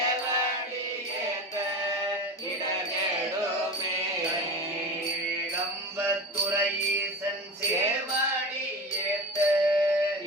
ஏத்த இடகெடுமே ஏகம்பத்துறையீசன் சேவடி ஏத்த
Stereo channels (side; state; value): both; normal; correlation 0.29